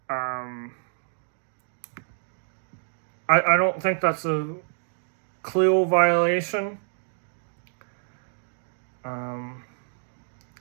I don't think that's a clear violation.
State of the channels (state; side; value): silent; left; digital silence